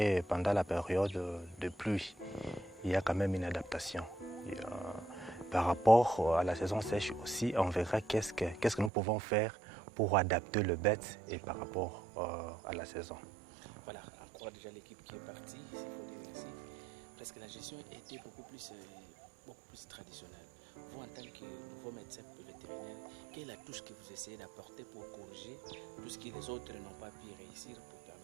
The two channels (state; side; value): drops out; left; at 8.9 s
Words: pendant la période de pluie. Il y a quand même une adaptation. Par rapport à la saison sèche aussi, on verra qu'est-ce que nous pouvons faire pour adapter le bête et par rapport à la saison. Voilà, encore déjà l'équipe qui est partie, il faut dire ainsi. Parce que la gestion était beaucoup plus traditionnelle. Vous, en tant que nouveau médecin vétérinaire, quelle est la touche que vous essayez d'apporter pour corriger tout ce que les autres n'ont pas pu réussir pour